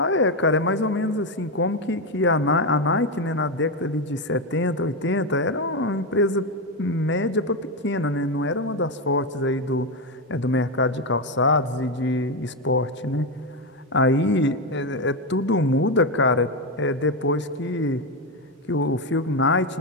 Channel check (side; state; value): both; normal; correlation 0.10